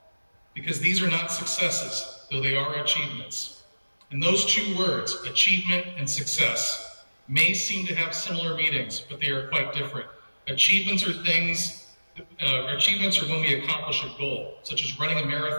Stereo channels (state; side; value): inverted; both; correlation -1.00